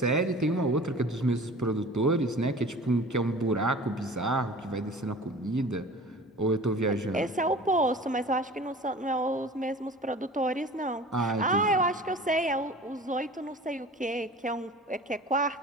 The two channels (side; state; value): both; normal; correlation 0.41